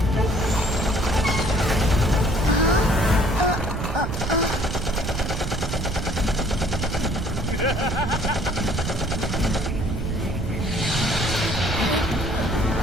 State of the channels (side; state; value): right; noise; rumble, 3 dB below the sound